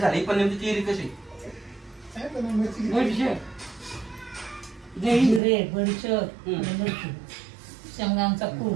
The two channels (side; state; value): left; drops out; at 5.4 s